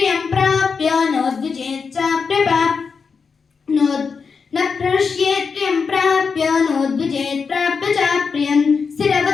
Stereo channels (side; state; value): right; quieter; 5.4 dB